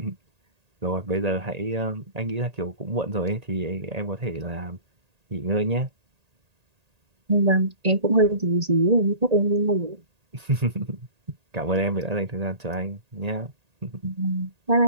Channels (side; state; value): left; late; 1.8 ms